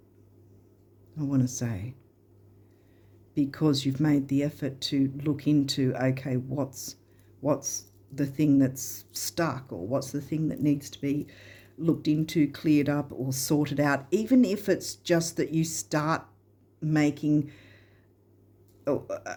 I want to say, because you've made the effort to look into, okay, what's the thing that's stuck, or what's the thing that needs to be looked into, cleared up, or sorted out, even if it's just that you start making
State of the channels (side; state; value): both; identical; correlation 1.00